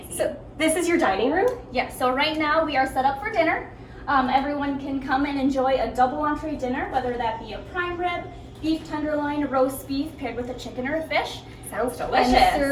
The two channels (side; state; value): both; identical; correlation 1.00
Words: So this is your dining room? Yeah, so right now we are set up for dinner. Everyone can come and enjoy a double entree dinner, whether that be a prime rib, beef tenderloin, roast beef paired with a chicken or a fish. Sounds delicious. And